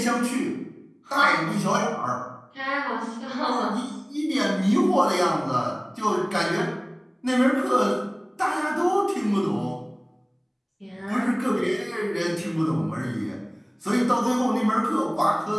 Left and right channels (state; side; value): identical; both; correlation 1.00